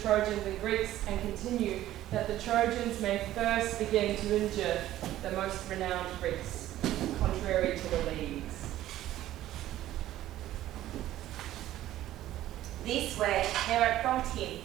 and Greeks, and continue that the Trojans may first begin to injure the most renowned Greeks, contrary to the leagues. This way Hera prompted him,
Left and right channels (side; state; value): left; quieter; 13.9 dB